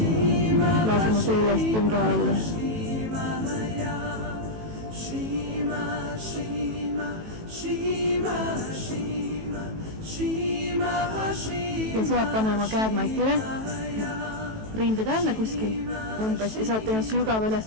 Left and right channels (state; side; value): late; left; 18 ms